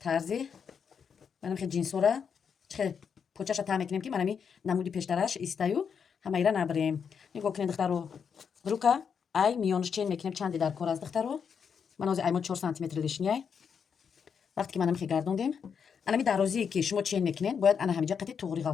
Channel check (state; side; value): quieter; right; 6.8 dB